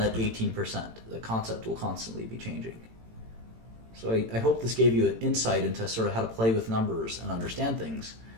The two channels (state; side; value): late; left; 18 ms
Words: 18%. The concept will constantly be changing. So I hope this gave you an insight into sort of how to play with numbers and understand things.